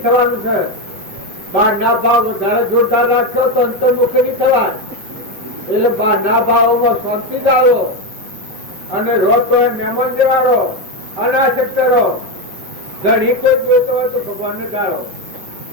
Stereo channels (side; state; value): left; late; 5.0 ms